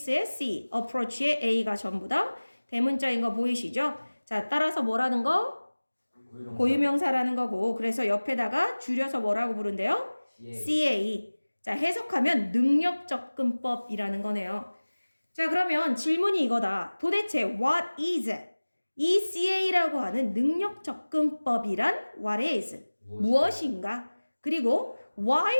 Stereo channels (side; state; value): both; inverted; correlation -1.00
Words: C, approach의 A가 전부 다 대문자인 거 보이시죠? 자, 따라서 뭐라는 거? 고유명사라는 거고, 그래서 옆에다가 줄여서 뭐라고 부른대요? CA. 자, 해석하면 능력접근법이라는 거네요. 자, 그러면 질문이 이거다. 도대체 what is 이 CA라고 하는 능력접근법이란 what is 무엇인가? 그리고 why